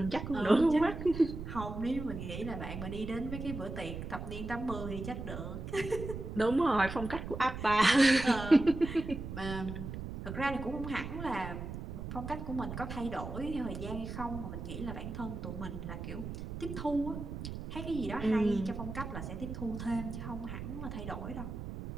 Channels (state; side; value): noise; right; rumble, 7 dB below the sound